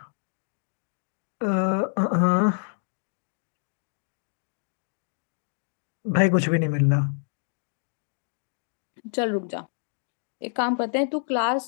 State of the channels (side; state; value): right; silent; digital silence